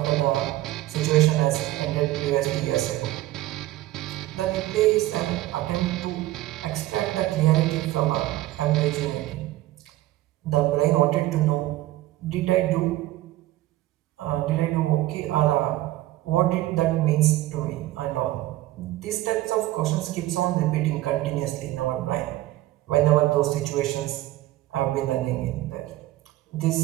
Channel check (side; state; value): left; quieter; 16.1 dB